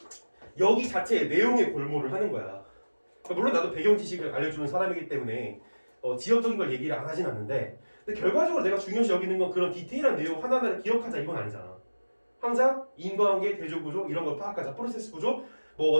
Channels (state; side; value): inverted; both; correlation -1.00